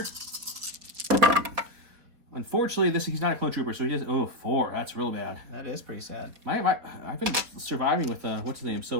Unfortunately, he's not a clone trooper, so he does 4. That's real bad. That is pretty sad. I've been surviving with what's his name.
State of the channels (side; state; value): left; late; 4.5 ms